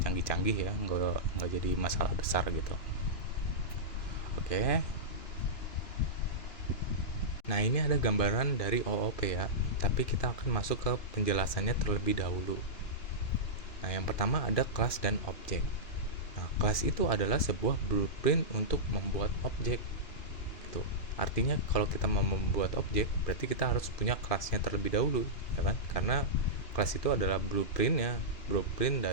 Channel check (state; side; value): late; right; 2.9 ms